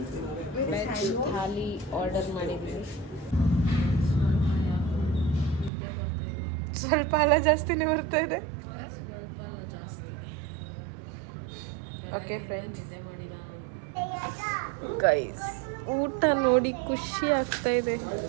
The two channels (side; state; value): left; drops out; at 5.7 s